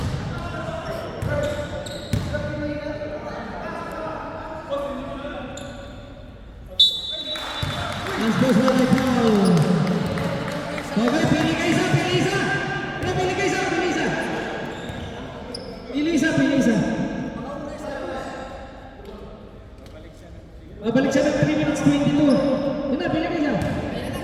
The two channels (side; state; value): both; identical; correlation 1.00